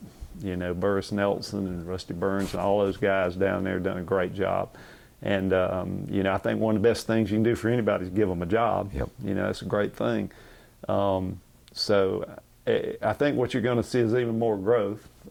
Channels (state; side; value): identical; both; correlation 1.00